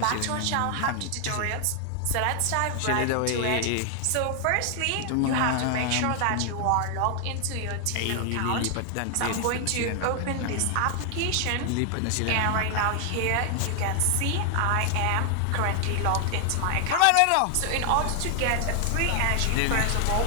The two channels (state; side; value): different; both; correlation 0.00